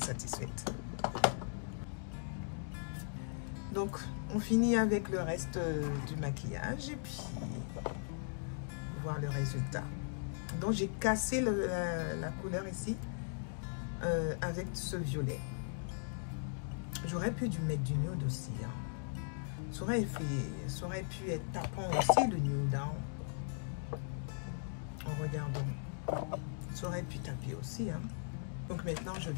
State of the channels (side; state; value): right; silent; digital silence